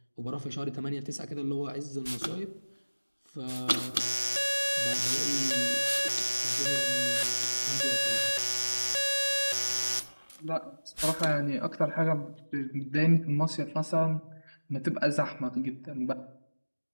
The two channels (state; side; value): inverted; both; correlation -1.00